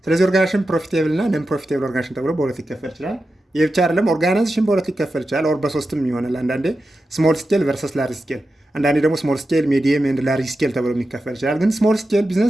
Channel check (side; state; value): both; normal; correlation 0.91